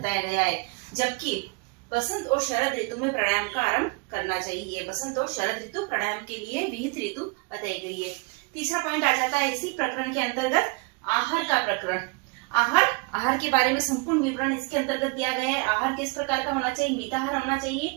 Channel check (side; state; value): left; quieter; 30.0 dB